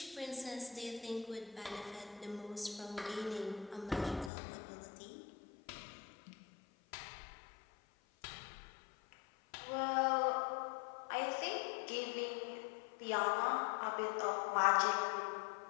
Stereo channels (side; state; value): right; drops out; at 4.3 s